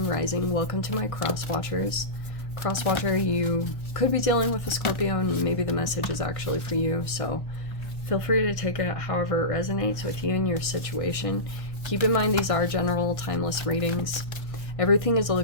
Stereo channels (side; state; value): right; late; 1.6 ms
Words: Rising. Welcome to my cross watchers. Cross watcher, you could be dealing with a Scorpio and maybe the message is actually for you, so feel free to take it however it resonates with you and your situation. Keep in mind these are general, timeless readings. Everything is